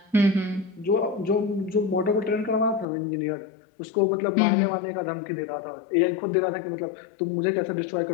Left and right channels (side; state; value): right; drops out; at 2.9 s